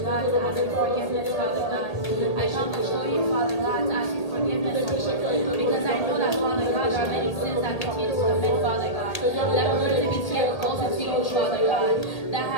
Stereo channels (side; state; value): right; late; 1.8 ms